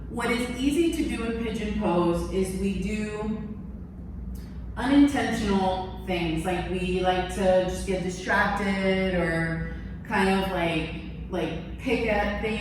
What is easy to do in pigeon pose is we do unintentional things, like we like to just get distracted or kind of like pick at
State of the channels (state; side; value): identical; both; correlation 1.00